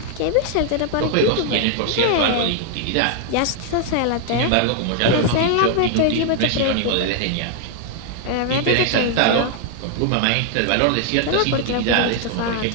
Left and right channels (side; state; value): both; different; correlation 0.00